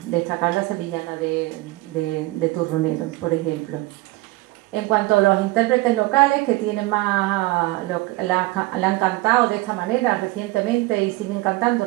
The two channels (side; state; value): left; quieter; 20.5 dB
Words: destacar la sevillana de Turronero, por ejemplo. En cuanto a los intérpretes locales que tienen más, la han cantado de esta manera recientemente y siguen cantando